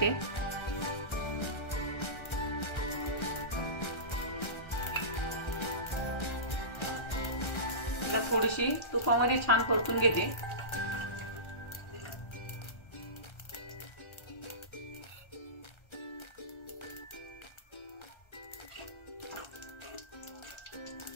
थोडीशी तुपामध्ये छान परतून घेते।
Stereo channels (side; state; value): right; late; 1.3 ms